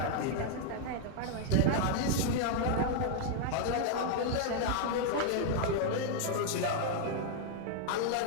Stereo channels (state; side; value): different; both; correlation 0.00